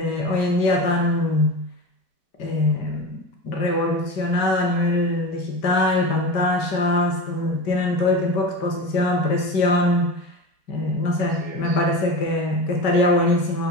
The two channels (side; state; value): right; late; 5.1 ms